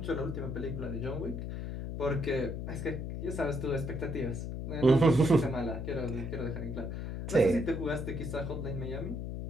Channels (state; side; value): noise; left; hum, 5 dB below the sound